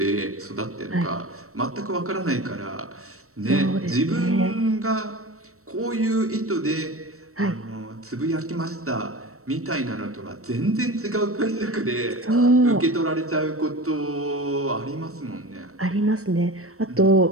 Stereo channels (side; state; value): left; late; 0.63 ms